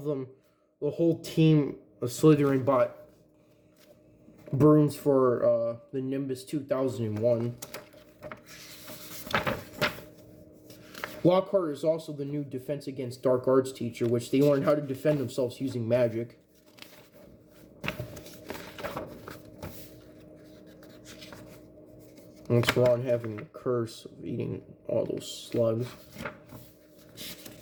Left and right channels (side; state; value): both; identical; correlation 1.00